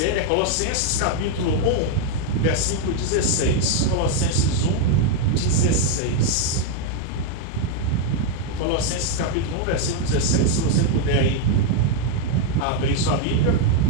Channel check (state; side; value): different; both; correlation 0.01